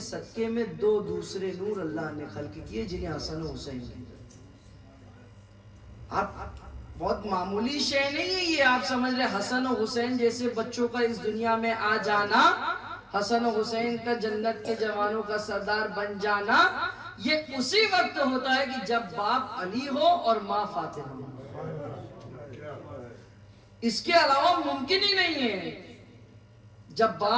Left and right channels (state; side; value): identical; both; correlation 1.00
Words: میں دو دوسرے نور اللہ نے خلق کیے جنہیں حسن و حسین کہتے ہیں۔ آپ بہت معمولی شے نہیں ہے یہ، آپ سمجھ رہے حسن و حسین جیسے بچوں کا اس دنیا میں آ جانا، حسن و حسین کا جنت کے جوانوں کا سردار بن جانا، یہ اسی وقت ہوتا ہے کہ جب باپ علی ہو اور ماں فاطمہ ہو۔ اس کے علاوہ ممکن ہی نہیں ہے۔ جب